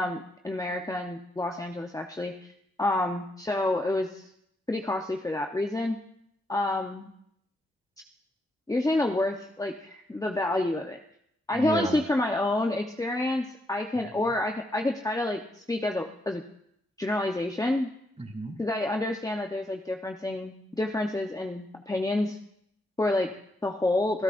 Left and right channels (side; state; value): both; normal; correlation 0.78